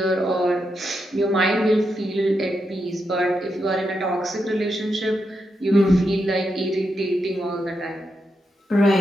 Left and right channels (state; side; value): normal; both; correlation 0.84